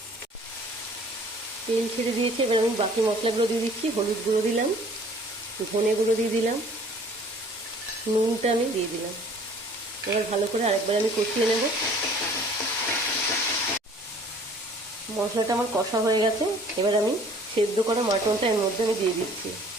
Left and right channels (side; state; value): both; normal; correlation 0.53